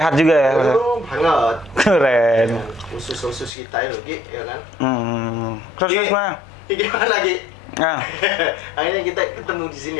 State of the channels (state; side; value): drops out; right; at 3.5 s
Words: juga ya Mas ya? Banget. Keren. Khusus kita itu Ki, ya kan? Terus mana? Gimana lagi? Nah, Akhirnya kita ketemu di sini